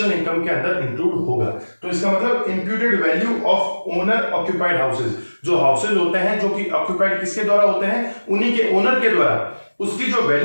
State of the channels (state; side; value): inverted; both; correlation -1.00